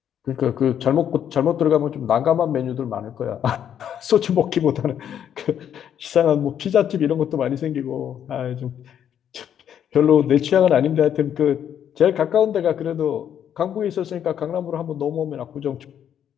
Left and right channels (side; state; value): right; quieter; 9.4 dB